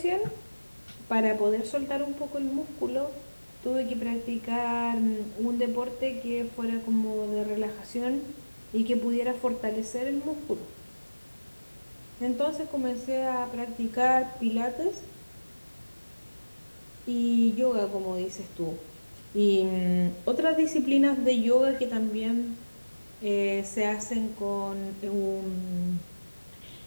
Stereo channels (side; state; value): both; inverted; correlation -1.00